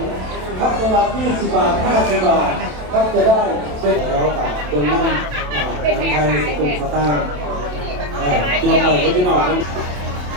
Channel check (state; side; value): late; left; 27 ms